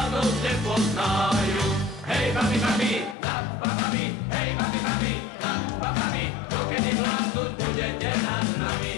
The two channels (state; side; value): drops out; right; at 3.2 s